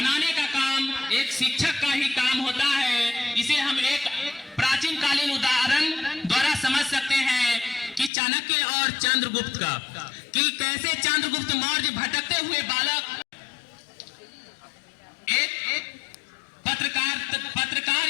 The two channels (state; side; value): drops out; right; at 8.1 s